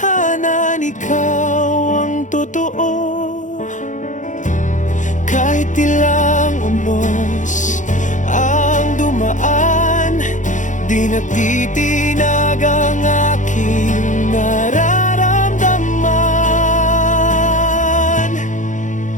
ikaw ang totoo. Kahit ilang unos ang dumaan, di natitinag ang aking nararamdaman.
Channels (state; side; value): late; right; 0.36 ms